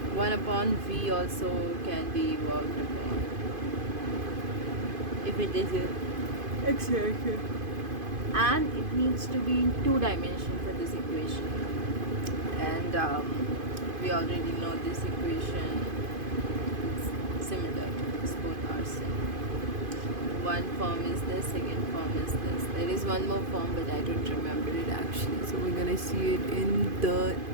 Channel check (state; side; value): late; left; 2.5 ms